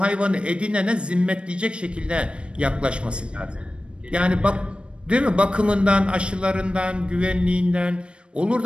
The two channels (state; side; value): late; left; 0.057 ms